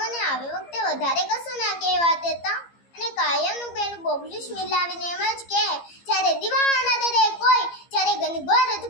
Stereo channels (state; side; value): late; right; 15 ms